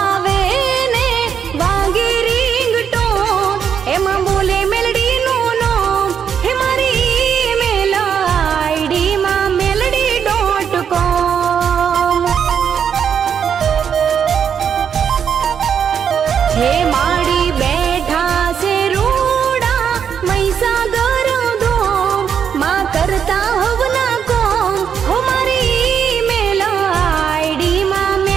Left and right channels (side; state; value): left; quieter; 7.8 dB